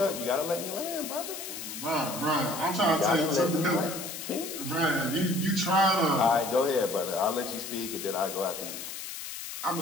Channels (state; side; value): noise; left; hiss, 8 dB below the sound